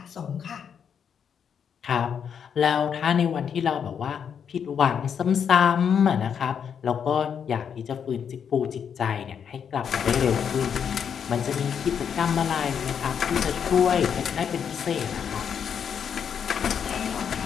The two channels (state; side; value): quieter; right; 7.6 dB